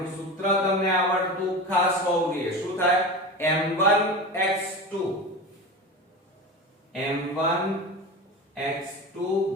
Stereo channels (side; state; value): both; normal; correlation 0.28